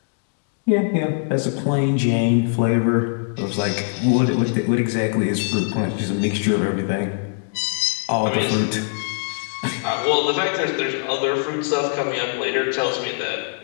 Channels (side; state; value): right; silent; digital silence